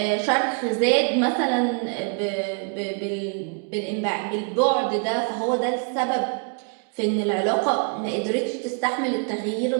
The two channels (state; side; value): quieter; left; 37.5 dB